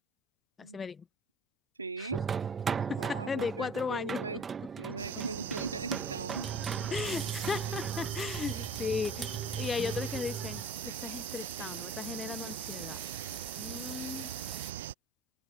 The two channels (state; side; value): normal; both; correlation 0.45